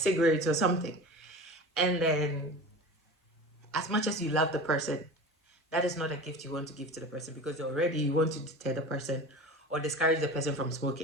or something, and then as much as you love the person, that is not a gift you want to give to the person because already you want to deter the person or discourage the person from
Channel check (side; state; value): both; normal; correlation 0.33